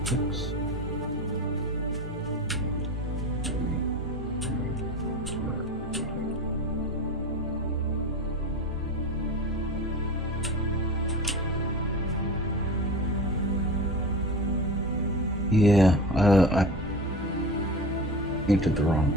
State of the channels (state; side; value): normal; both; correlation 0.30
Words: Six. Yeah, I painted the wrong